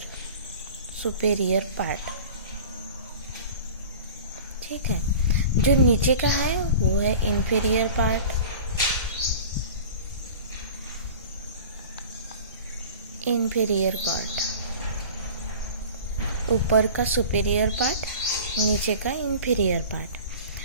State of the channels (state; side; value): inverted; both; correlation -0.40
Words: पार्ट। ठीक है। जो नीचे का है वो है इंफीरियर पार्ट। इंफीरियर पार्ट, ऊपर का सुपेरियर पार्ट, नीचे का इंफीरियर